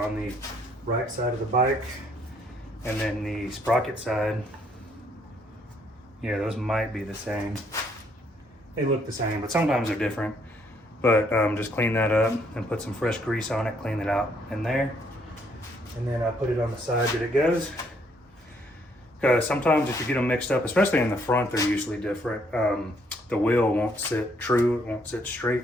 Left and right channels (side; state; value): both; normal; correlation 0.68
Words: the right side of the bike. And then the sprocket side, yeah, those might be the same. They look the same, but sometimes they're different. But just clean that up and put some fresh grease on it, clean it out in there. And then I put it on the side that it goes. Because sometimes if you get them mixed up, especially in the front, they're usually different. The wheel won't sit true, it won't sit straight